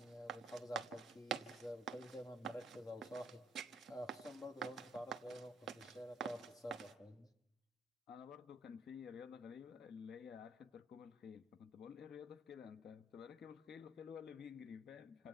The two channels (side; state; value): both; normal; correlation 0.66